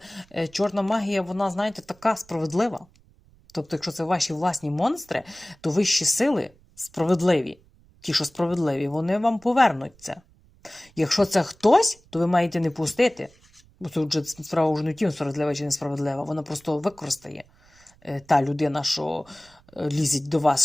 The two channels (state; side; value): noise; right; rumble, 29 dB below the sound